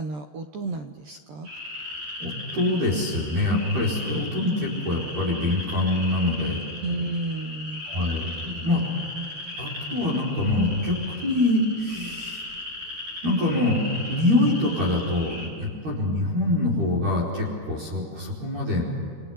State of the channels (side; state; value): left; late; 13 ms